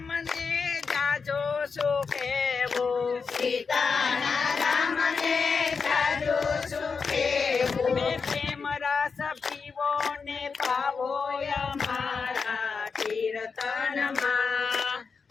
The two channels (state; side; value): quieter; right; 5.2 dB